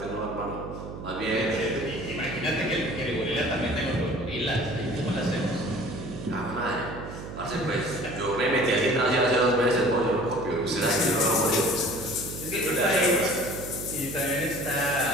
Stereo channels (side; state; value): right; noise; hum, 10 dB below the sound